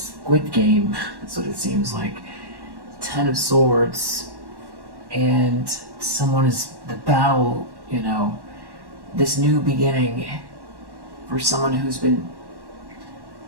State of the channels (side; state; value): left; late; 1.1 ms